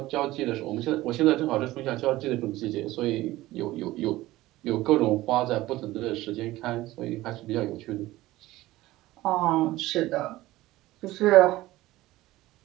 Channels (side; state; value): left; quieter; 17.2 dB